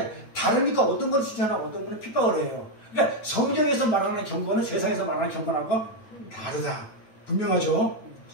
다르니까 어떤 건 칭찬하고 어떤 건 핍박을 해요. 그러니까 성경에서 말하는 경건은 세상에서 말하는 경건하고 다르다. 분명하죠?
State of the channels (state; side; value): late; right; 9.0 ms